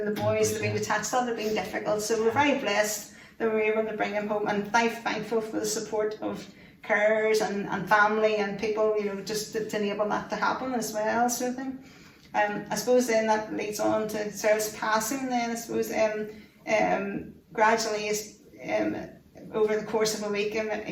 the boys would have been detached. That would have been difficult, so we're very blessed that we were able to bring him home, and thankful for the support of carers and family and people, you know, just to enable that to happen as well, sort of thing. I suppose then that leads on to Cyril's passing then. I suppose gradually over the course of a week,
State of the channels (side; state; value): both; identical; correlation 1.00